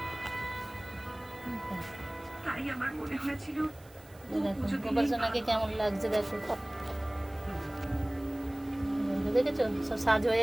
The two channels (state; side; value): noise; right; hiss, 25 dB below the sound